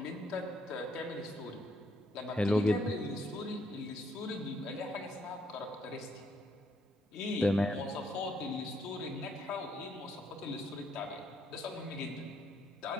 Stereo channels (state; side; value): normal; both; correlation 0.72